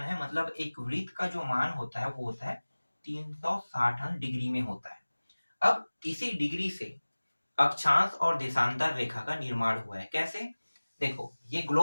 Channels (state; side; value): inverted; both; correlation -1.00